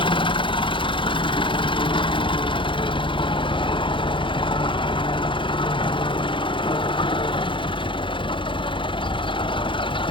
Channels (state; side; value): late; right; 0.24 ms